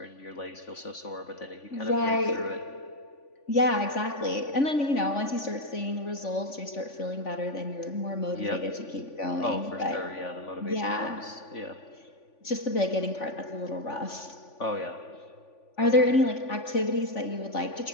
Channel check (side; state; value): right; late; 3.5 ms